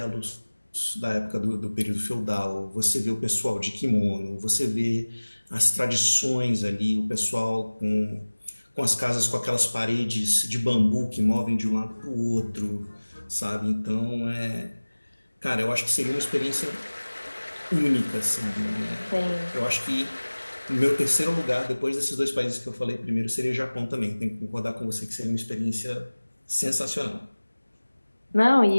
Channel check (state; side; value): inverted; both; correlation -1.00